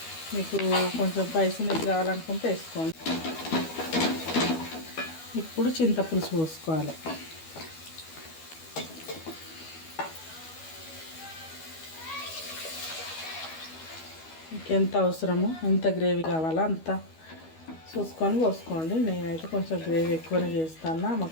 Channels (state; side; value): late; right; 12 ms